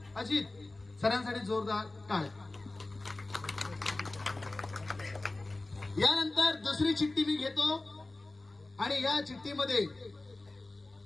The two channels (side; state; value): right; quieter; 3.0 dB